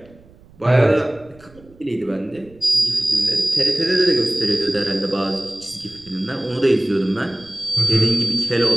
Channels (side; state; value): right; noise; rumble, 26 dB below the sound